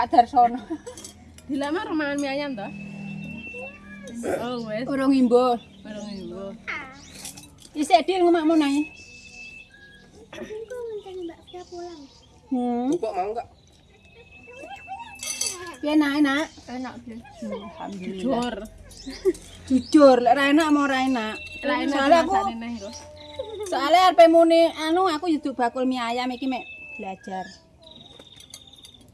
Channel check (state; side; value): identical; both; correlation 1.00